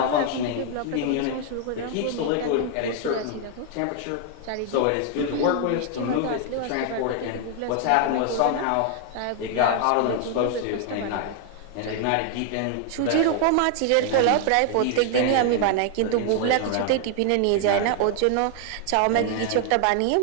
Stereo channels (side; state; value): both; different; correlation 0.00